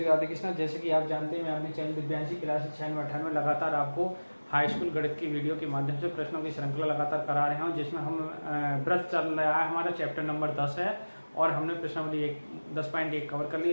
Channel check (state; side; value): inverted; both; correlation -1.00